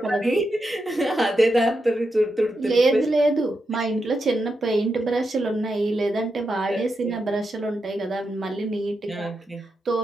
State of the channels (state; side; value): normal; both; correlation 0.86